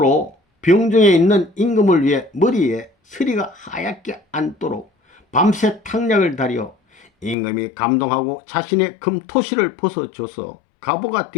병중에 있는 임금을 위해 머리에 서리가 하얗게 앉도록 밤새 탕약을 다려 임금이 감동하고 자신의 금토시를 벗어줘서 가보가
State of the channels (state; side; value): drops out; right; at 7.4 s